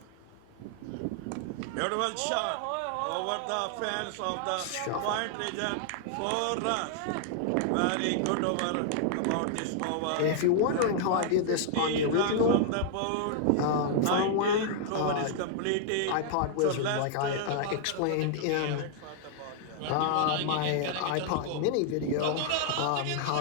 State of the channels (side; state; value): both; different; correlation -0.01